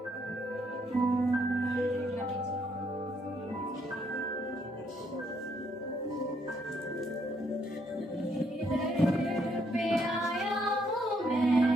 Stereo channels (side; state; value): both; normal; correlation 0.72